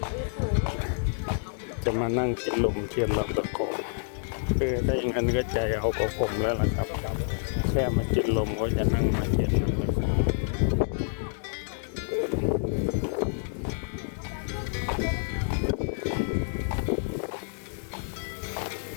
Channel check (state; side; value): silent; right; digital silence